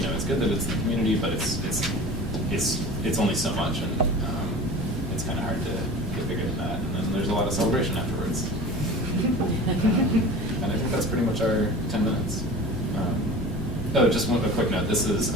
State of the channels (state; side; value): normal; both; correlation 0.37